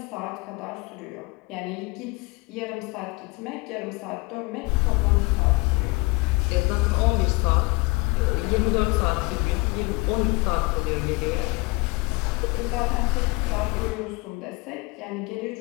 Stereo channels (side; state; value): right; quieter; 26.0 dB